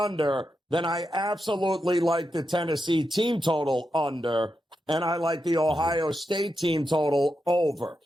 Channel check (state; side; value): normal; both; correlation 0.87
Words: then I absolutely like the Tennessee team total under, and I like the Ohio State team total over.